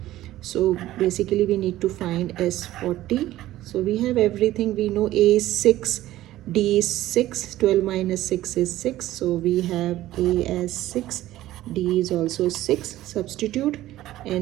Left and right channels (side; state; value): left; quieter; 14.9 dB